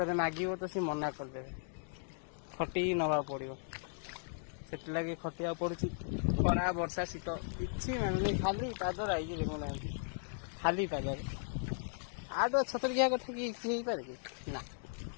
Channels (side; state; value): right; silent; digital silence